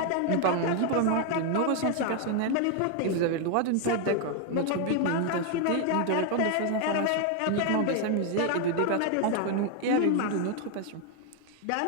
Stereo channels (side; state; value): both; different; correlation 0.00